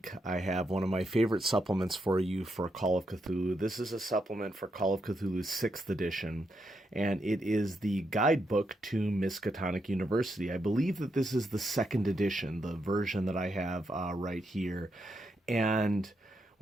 I have one of my favorite supplements for you for Call of Cthulhu. This is a supplement for Call of Cthulhu's 6th edition, and it is the guidebook to Miskatonic University. I believe that this is the 2nd edition, the version that I have right here. And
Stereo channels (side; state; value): both; normal; correlation 0.82